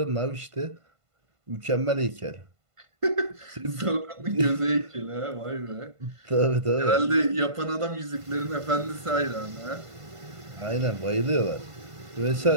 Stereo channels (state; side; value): late; left; 1.5 ms